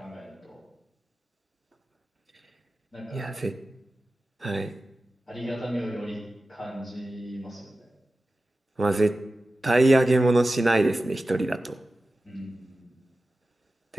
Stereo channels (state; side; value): normal; both; correlation 0.95